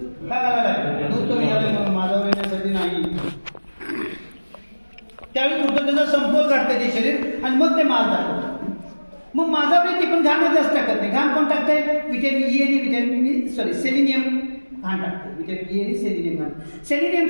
का घालायला? दूध कमी झालं म्हणून, माझ्यावर येण्यासाठी नाही. त्यावेळी कुठं त्याचा समतोल काढतं ते शरीर आणि मग ते माल दाखवतं. मग माझावर ती पण घाण जास्त टाकत नाही. घाण कोण टाकतंय? व्हिटॅमिन ई आणि सेलिनियम घाण टाकते. व्हिटॅमिन ई आणि सेलिनियम घाण.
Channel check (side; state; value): both; inverted; correlation -1.00